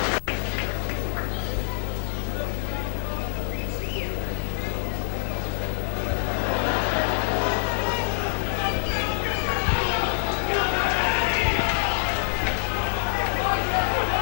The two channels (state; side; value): silent; right; digital silence